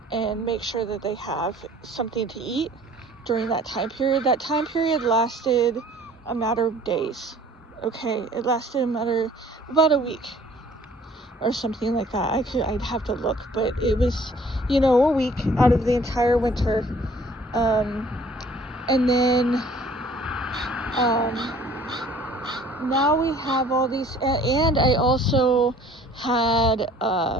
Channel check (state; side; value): normal; both; correlation 0.54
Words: and make sure that they have something to eat during that time period. That time period lasted a matter of days. Okay, it lasted about a week or something like that. I'd have to look, but it was, a week out of the entire winter. And then, now we have all these, and I also had,